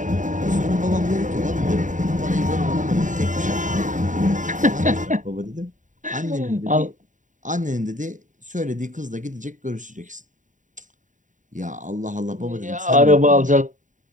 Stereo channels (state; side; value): late; left; 0.37 ms